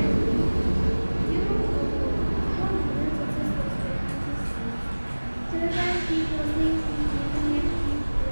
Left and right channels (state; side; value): inverted; both; correlation -1.00